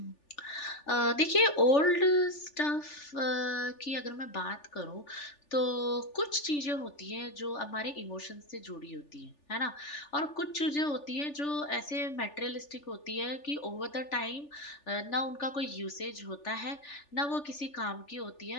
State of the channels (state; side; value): late; right; 3.4 ms